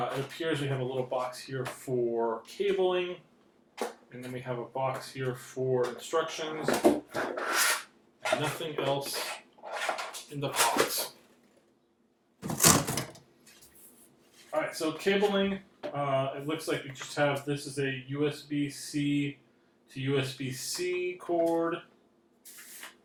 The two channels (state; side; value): identical; both; correlation 1.00